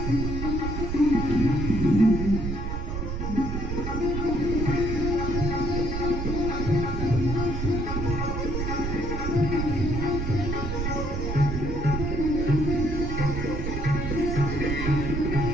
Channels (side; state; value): right; noise; rumble, 2 dB below the sound